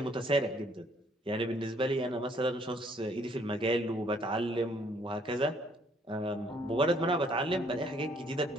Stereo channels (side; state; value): both; normal; correlation 0.64